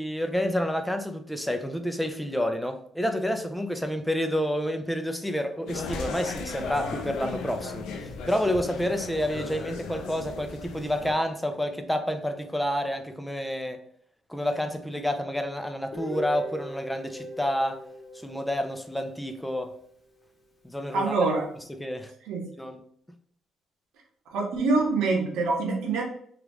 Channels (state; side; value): normal; both; correlation 0.83